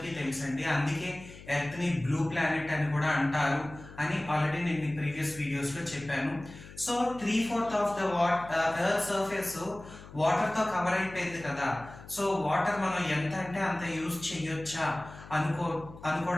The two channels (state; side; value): noise; left; hum, 17 dB below the sound